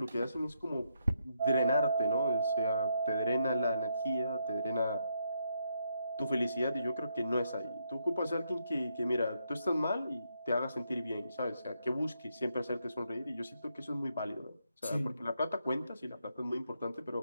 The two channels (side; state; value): both; inverted; correlation -0.78